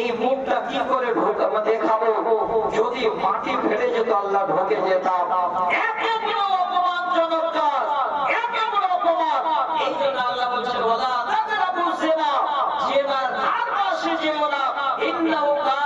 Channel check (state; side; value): identical; both; correlation 1.00